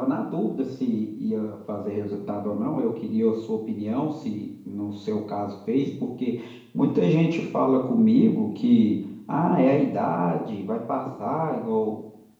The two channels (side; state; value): both; identical; correlation 1.00